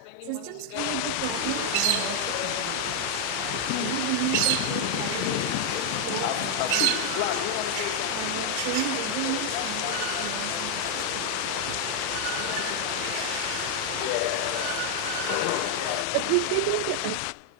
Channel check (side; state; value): both; different; correlation 0.00